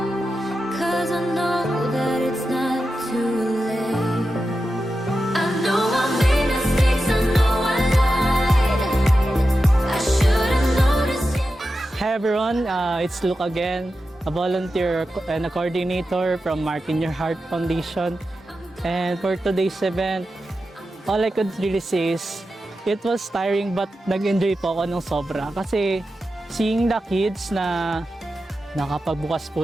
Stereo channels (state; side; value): normal; both; correlation 0.91